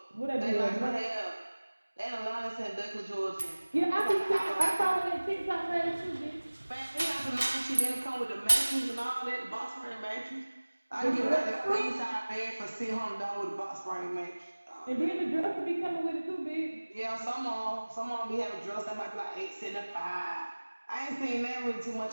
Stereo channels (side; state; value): both; inverted; correlation -1.00